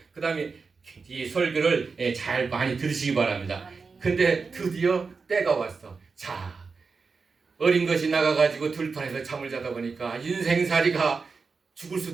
그 다음에 이 설교를 잘 많이 들으시기 바랍니다. 근데 드디어 때가 왔어. 자, 어린 것이 나가가지고 들판에서 잠을 자다 보니까 인생살이가 죽을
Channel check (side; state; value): left; quieter; 4.7 dB